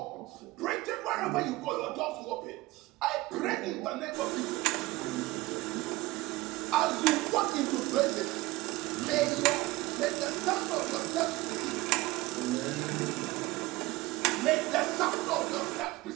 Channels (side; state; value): left; quieter; 19.9 dB